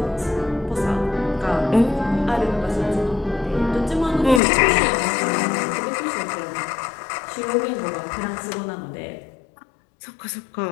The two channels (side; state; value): right; drops out; at 4.4 s